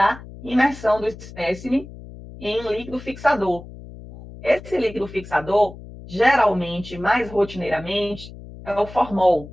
imersão do espécime em líquido fixador. Esse líquido fixador, geralmente, mais rotineiramente, é o formol.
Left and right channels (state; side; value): noise; left; hum, 16 dB below the sound